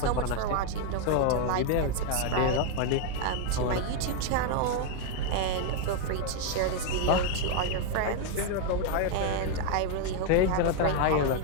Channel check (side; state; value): both; different; correlation 0.01